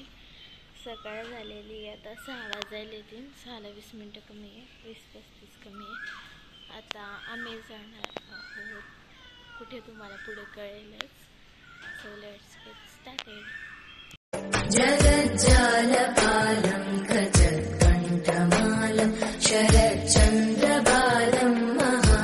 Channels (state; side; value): identical; both; correlation 1.00